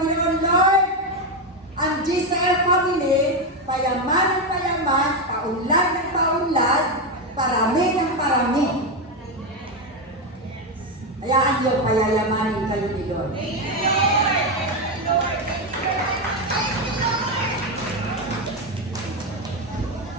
Lord, ang GCL family, payaman ng payaman, paunlad ng paunlad, parami ng parami. Hayaan niyo, payayamanin kayo ni Lord.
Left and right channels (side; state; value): both; normal; correlation 0.09